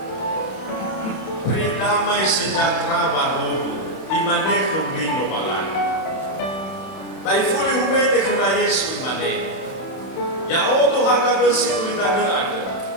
damai sejahtera baru imane kundino balan. Bai fuli humete kena Yesu imane. Ya oto haka besi kulitane ada.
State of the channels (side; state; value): right; late; 31 ms